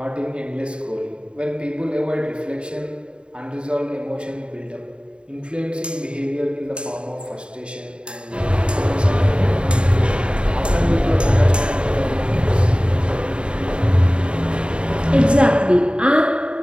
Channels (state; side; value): late; left; 0.053 ms